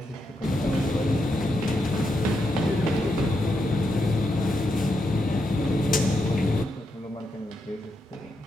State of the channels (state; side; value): normal; both; correlation 0.83